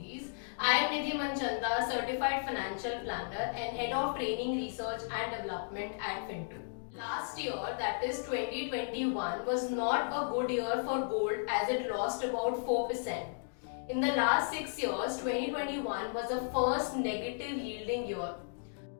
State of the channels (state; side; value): silent; right; digital silence